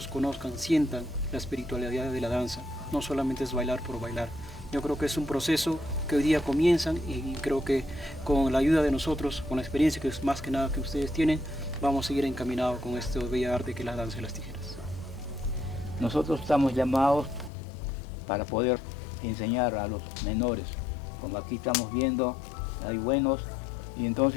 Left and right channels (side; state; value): right; drops out; at 17.5 s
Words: conozcan, sientan la espiritualidad de la danza. No solamente es bailar por bailar. Yo creo que es un proceso que hoy día comienzan y creo que con la ayuda de nosotros, con la experiencia que es más que nada que ustedes tienen, vamos a seguir encaminados con este bello arte que es la danza de las tijeras. Nosotros estamos llamados para poder enseñar a los menores. Como aquí estamos viendo, hay buenos y